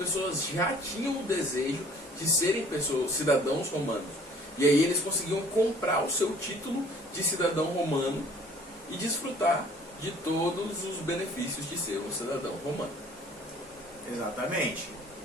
já tinham o desejo de serem cidadãos romanos. E aí eles conseguiam comprar o seu título de cidadão romano e desfrutar de todos os benefícios de ser um cidadão romano. Exatamente.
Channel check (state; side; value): normal; both; correlation 0.54